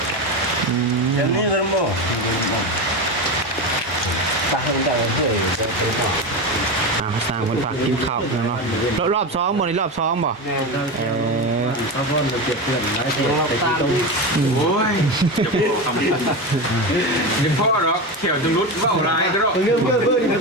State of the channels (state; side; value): normal; both; correlation 0.19